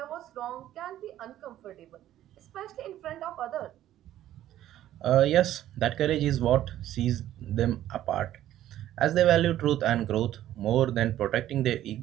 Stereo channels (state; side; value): quieter; left; 12.8 dB